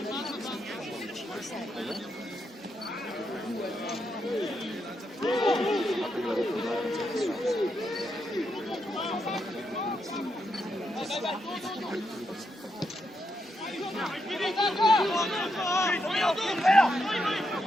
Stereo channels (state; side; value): normal; both; correlation 0.82